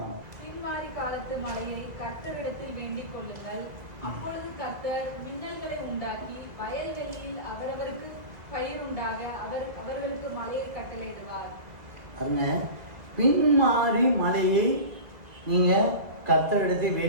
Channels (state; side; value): late; left; 2.0 ms